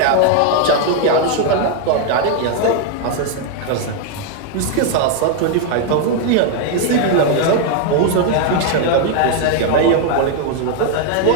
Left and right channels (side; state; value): both; different; correlation 0.00